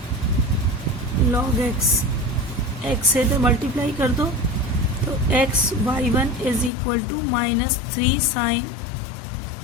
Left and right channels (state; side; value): drops out; right; at 6.7 s